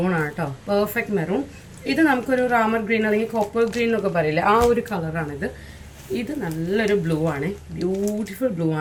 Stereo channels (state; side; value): identical; both; correlation 1.00